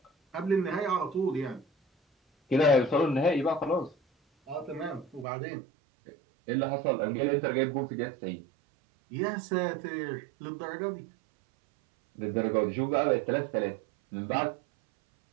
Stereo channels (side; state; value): left; drops out; at 5.2 s